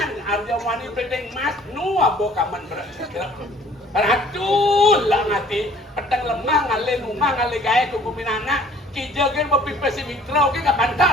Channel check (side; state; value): both; normal; correlation 0.54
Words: Arya Wani Bedeng Mas nu abo kaman berat. Ratul lah ngati petang lemah ngale numah ngale gae ku kuminana kijagen mapipesi mitra oke ka